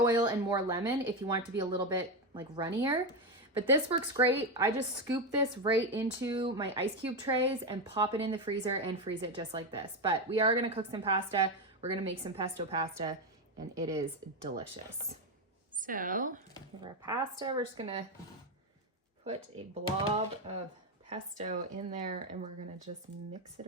and more lemon if you want it to be a little bit like runnier, but this works great. I just scoop this right into my ice cube trays and pop it in the freezer and freeze it just like this. But we are gonna cook some pasta. We're gonna make some pesto pasta and it is delicious. So for our pasta, we're just gonna put a blob of pesto in there and we're gonna just mix it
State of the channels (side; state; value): both; normal; correlation 0.11